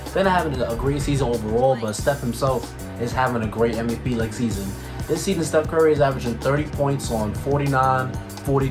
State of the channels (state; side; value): identical; both; correlation 1.00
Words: They're not having a great season overall, but Steph himself is having a great MVP-like season. This season, Steph Curry is averaging 30 points on 49,